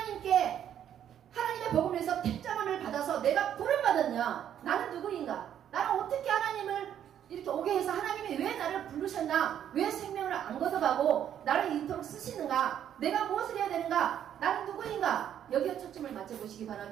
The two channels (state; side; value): quieter; left; 9.9 dB